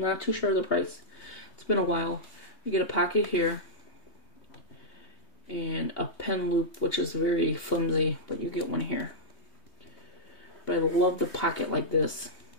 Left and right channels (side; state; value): right; late; 3.2 ms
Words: not too sure of the price. It's been a while. You get a pocket here. And a pen loop, which is very flimsy, but you get one here. But I love the pocket like this.